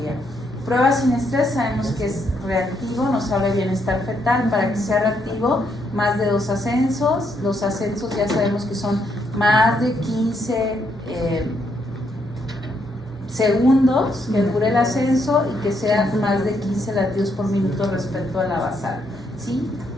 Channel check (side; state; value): both; normal; correlation 0.75